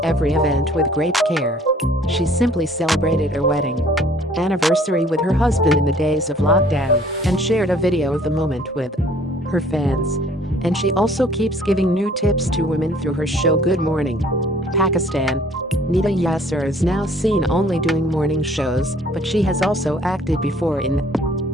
every event with great care. She simply celebrated her wedding anniversary with her husband in the days of lockdown and shared a video of the moment with her fans. And she also keeps giving new tips to women through her show Good Morning Pakistan. Nida Yasir is now seen only doing morning shows, but she has also acted before in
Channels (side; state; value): both; normal; correlation 0.56